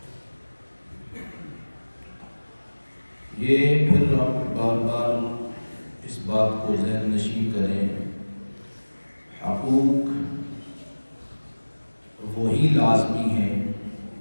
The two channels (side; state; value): both; inverted; correlation -1.00